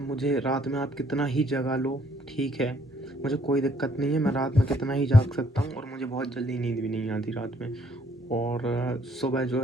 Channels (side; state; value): both; normal; correlation 0.66